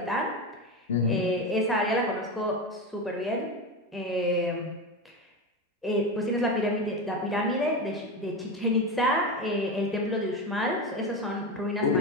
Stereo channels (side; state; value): both; normal; correlation 0.20